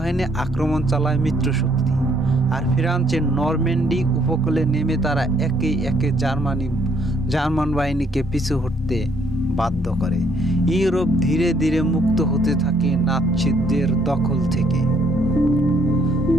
আক্রমণ চালায় মিত্রশক্তি। আর ফ্রান্সের নরম্যান্ডি উপকূলে নেমে তারা একে একে জার্মান বাহিনীকে পিছু হটতে বাধ্য করে। ইউরোপ ধীরে ধীরে মুক্ত হতে থাকে নাৎসিদের দখল থেকে।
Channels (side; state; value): both; normal; correlation 0.67